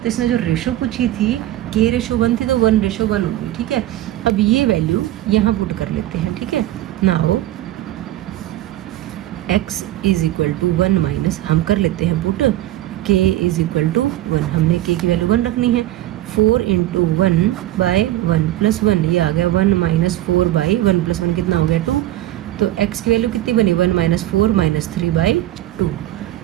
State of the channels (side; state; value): left; quieter; 14.5 dB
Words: इसने जो रेशो पूछी थी k रेशो 1 थी तो 1 रेशो 1 होगी। ठीक है, अब ये वैल्यू यहाँ पुट कर लेते हैं। ठीक है, now x is equal to 1 minus, हम कर लेते हैं put k is equal to 1, हमने k की वैल्यू 1 रखनी है। 4 इंटू 1 बाई 1 प्लस 1, ये आ गया 1 माइनस 4 बाई 1 प्लस 1 कितना हो गया 2। तो x की वैल्यू कितनी बनी, 1 माइनस 4 माइनस 3 बाई 2।